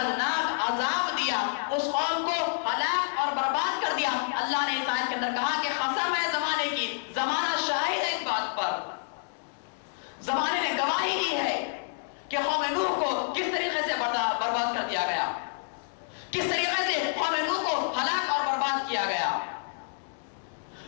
عذاب دیا، اس قوم کو ہلاک اور برباد کر دیا. اللہ نے اس آیت کے اندر کہا کہ قسم ہے زمانے کی، زمانہ شاہد ہے اس بات پر، زمانے نے گواہی کی ہے کہ قوم نوح کو کس طریقے سے برباد کر دیا گیا، کس طریقے سے قوم نوح کو ہلاک اور برباد کیا گیا.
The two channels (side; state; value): right; silent; digital silence